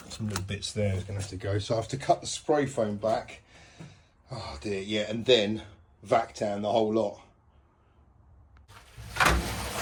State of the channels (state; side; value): identical; both; correlation 1.00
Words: some little bits there is going to have to go. So I have to cut the spray foam back. Oh dear, yeah, and then vac down the whole lot.